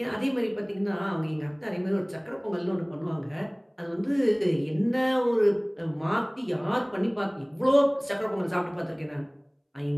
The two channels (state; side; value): identical; both; correlation 1.00